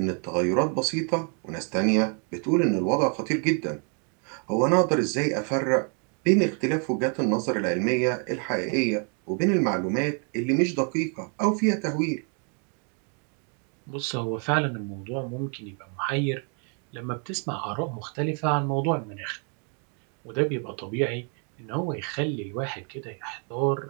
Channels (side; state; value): left; quieter; 39.8 dB